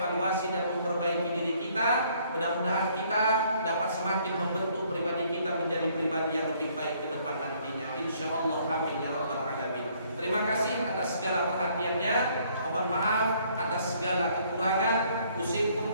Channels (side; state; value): both; inverted; correlation -0.64